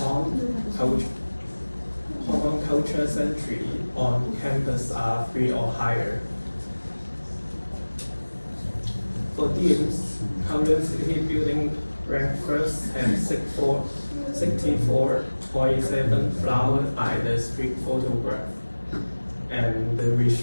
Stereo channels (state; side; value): inverted; both; correlation -1.00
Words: culture century on campus are 3 or higher. For teams, Kowloon City Building ranked first and 64.7 flowered by the street photograph. And the